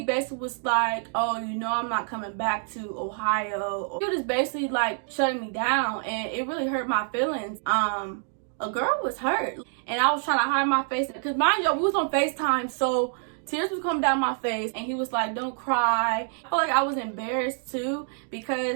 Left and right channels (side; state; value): left; silent; 58 dB below the other